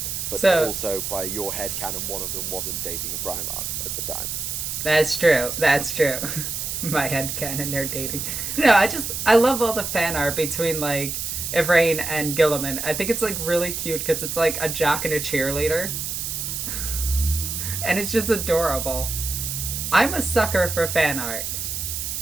But So- also, by your headcanon, one of them wasn't dating a Primarch at the time. That's true. That's true. My headcanon, they're dating. No, I love all the fan art between, like, Yvraine and Guilliman. I think it's, like, really cute because it's, like, a jock and a cheerleader. And it's just adorable. I'm a sucker for fan art.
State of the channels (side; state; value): right; noise; hiss, 4 dB below the sound